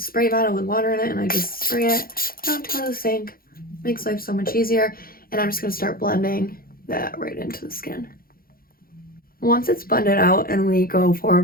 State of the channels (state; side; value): late; right; 0.42 ms